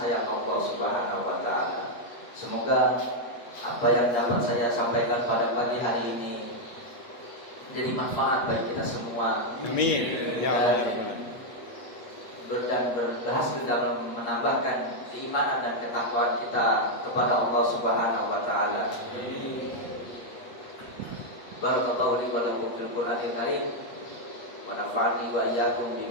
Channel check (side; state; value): right; late; 8.3 ms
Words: Allah Subhanahu wa taala. Semoga apa yang dapat saya sampaikan pada pagi hari ini menjadi manfaat bagi kita semua. Amin. Ya Allah. Dan berhasil dalam menambahkan keimanan dan ketakwaan kita kepada Allah Subhanahu wa taala. Barakallahu li wa lakum fil Qur'anil Karim wa nafa'ani wa iyyakum